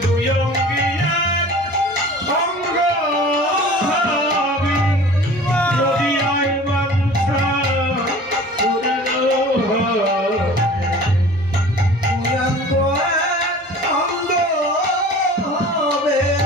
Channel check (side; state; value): both; normal; correlation 0.43